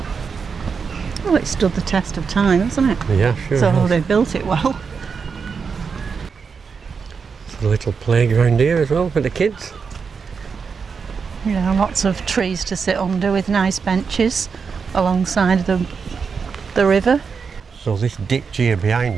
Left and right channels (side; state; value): left; quieter; 5.7 dB